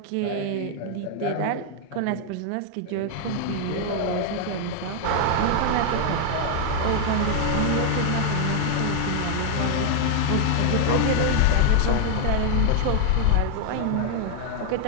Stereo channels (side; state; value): both; different; correlation 0.00